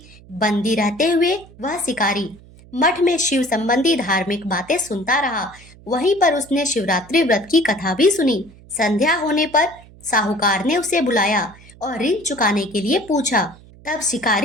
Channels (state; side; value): noise; right; hum, 23 dB below the sound